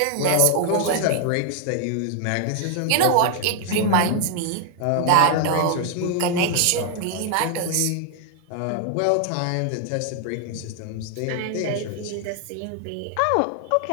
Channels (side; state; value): both; different; correlation 0.00